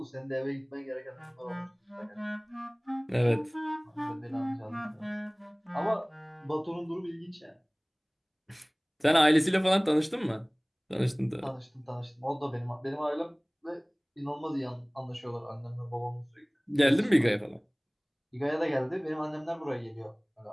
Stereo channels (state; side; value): identical; both; correlation 1.00